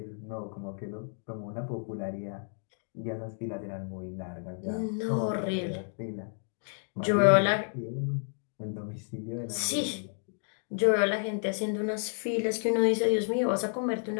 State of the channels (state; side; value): silent; right; 57 dB below the other